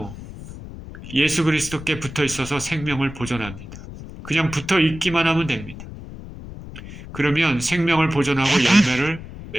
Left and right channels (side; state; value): left; noise; rumble, 13 dB below the sound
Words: 예수 그리스도께 붙어 있어서 생명을 보존합니다. 그냥 붙어 있기만 하면 됩니다. 그러면 생명을 보존하고 열매를